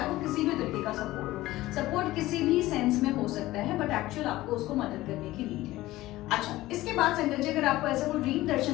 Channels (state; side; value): quieter; right; 17.1 dB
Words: वो किसी भी तरीके का सपोर्ट हो। सपोर्ट किसी भी सेंस में हो सकता है, बट एक्चुअल आपको उसको मदद करने की नीड है। अच्छा, इसके बाद संगत जी, अगर आपको ऐसा कोई ड्रीम